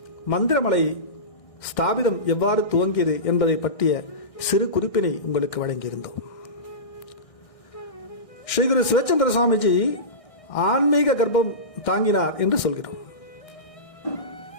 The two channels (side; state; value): right; late; 1.6 ms